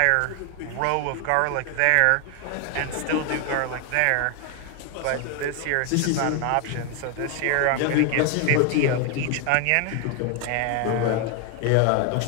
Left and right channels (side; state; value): both; different; correlation 0.01